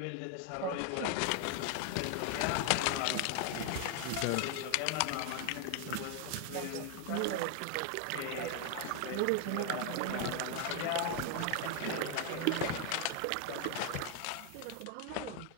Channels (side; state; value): both; different; correlation 0.00